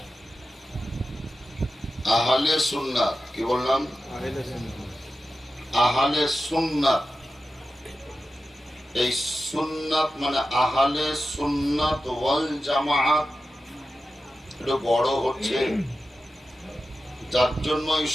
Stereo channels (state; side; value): normal; both; correlation 0.92